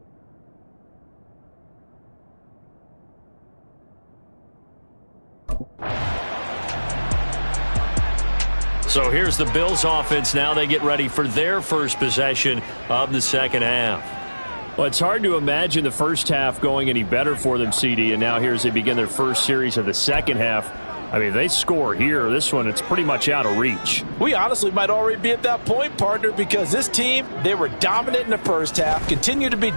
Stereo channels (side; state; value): both; inverted; correlation -1.00